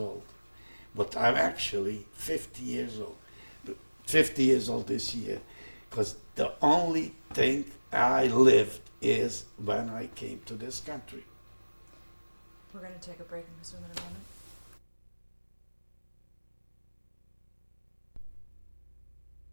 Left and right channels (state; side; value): inverted; both; correlation -1.00